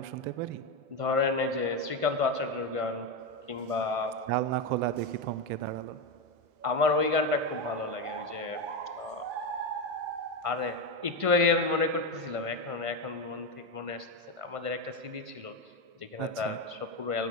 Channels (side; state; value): left; late; 1.5 ms